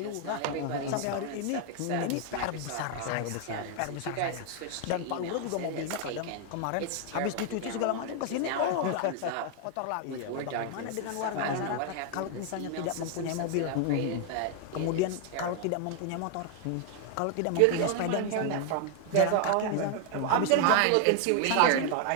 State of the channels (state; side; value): different; both; correlation 0.00